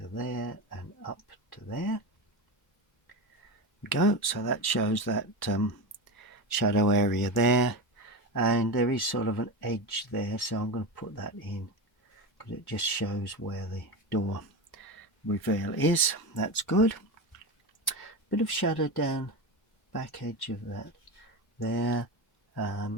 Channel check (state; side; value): late; right; 1.0 ms